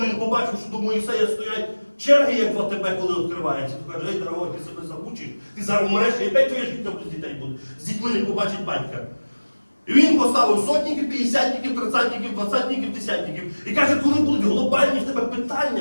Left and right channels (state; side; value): inverted; both; correlation -1.00